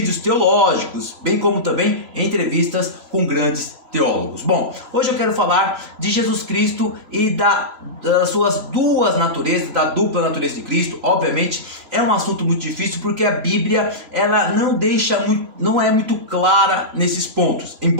teológicos, bem como também entrevistas com grandes teólogos. Bom, hoje eu quero falar de Jesus Cristo e das suas duas naturezas, da dupla natureza de Cristo. Obviamente é um assunto muito difícil porque a Bíblia ela não é muito clara nesses pontos,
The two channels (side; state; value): left; late; 3.0 ms